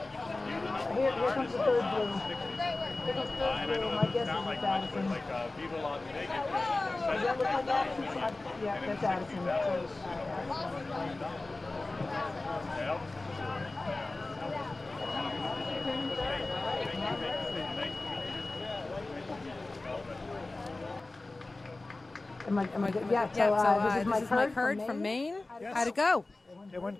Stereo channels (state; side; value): quieter; right; 3.1 dB